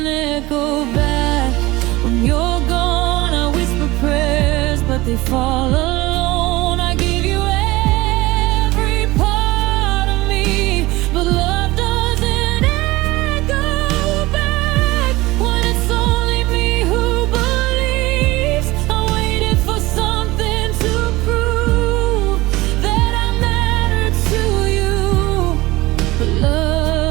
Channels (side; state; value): left; quieter; 20.0 dB